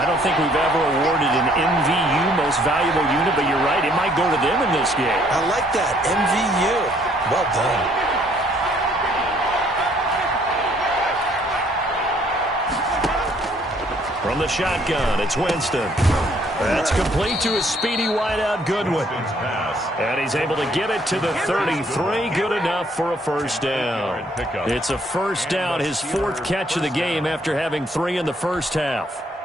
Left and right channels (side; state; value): both; normal; correlation 0.64